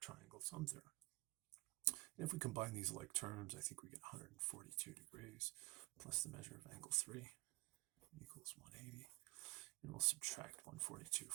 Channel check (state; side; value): quieter; left; 23.6 dB